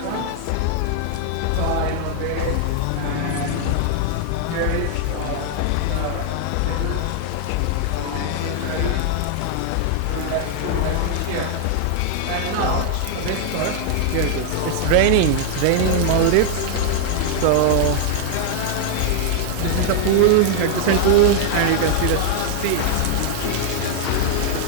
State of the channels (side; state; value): both; different; correlation 0.00